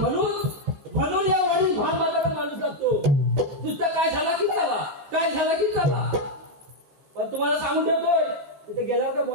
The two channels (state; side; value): late; left; 14 ms